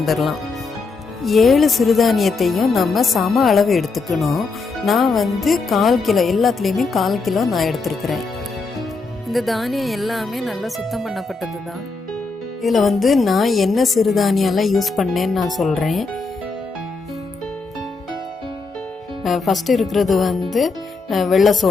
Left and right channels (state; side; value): quieter; right; 4.1 dB